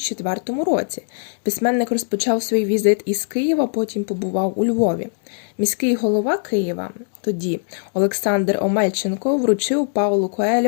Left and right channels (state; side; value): silent; right; digital silence